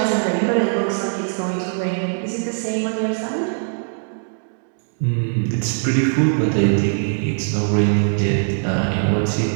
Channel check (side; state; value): left; silent; 65 dB below the other